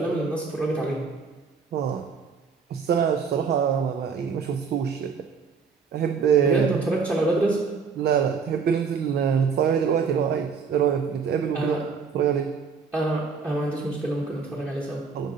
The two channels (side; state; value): left; quieter; 5.5 dB